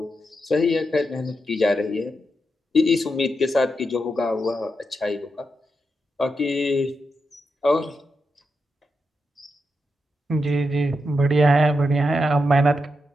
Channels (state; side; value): normal; both; correlation 0.86